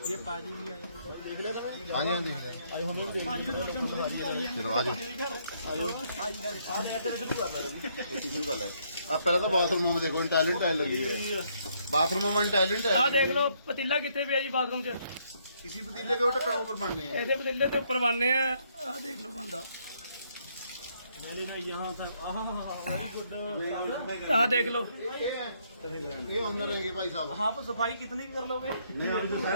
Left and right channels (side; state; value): both; inverted; correlation -0.71